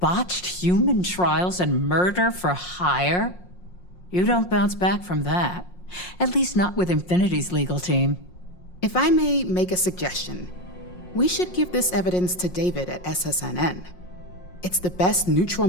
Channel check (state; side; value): late; right; 5.6 ms